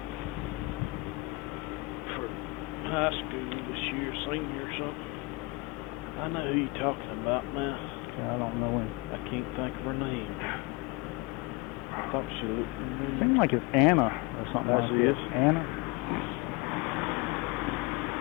for high school this year, senior or something. I know who you're talking about now. I don't know him. I can't think of her name. I thought she looked familiar. Seems like it's Anna or something like That's that. Anna?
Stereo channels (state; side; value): quieter; right; 23.1 dB